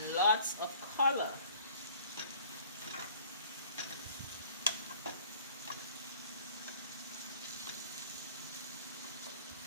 lots of color.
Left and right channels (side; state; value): both; inverted; correlation -0.51